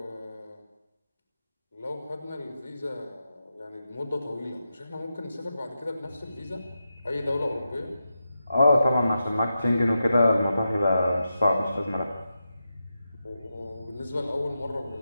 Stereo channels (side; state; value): both; inverted; correlation -0.89